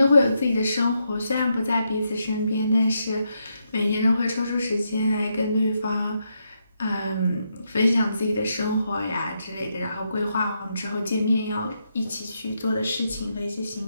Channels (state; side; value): inverted; both; correlation -0.81